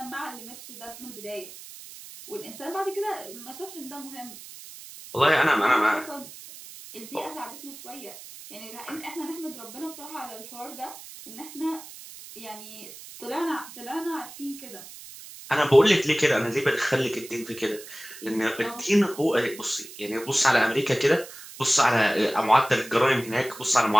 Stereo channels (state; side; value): noise; right; hiss, 15 dB below the sound